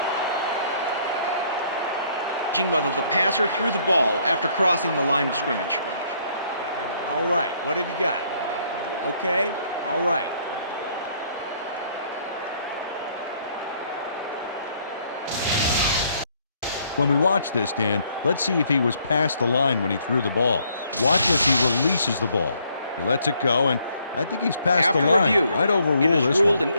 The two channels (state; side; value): inverted; both; correlation -0.67